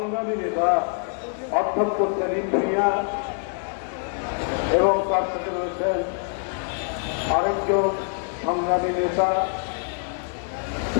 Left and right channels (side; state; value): right; silent; 62 dB below the other